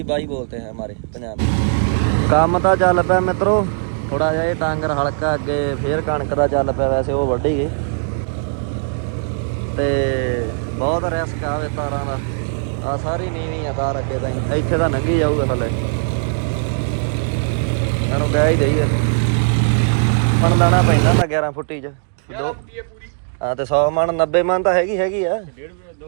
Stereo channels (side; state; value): left; silent; 67 dB below the other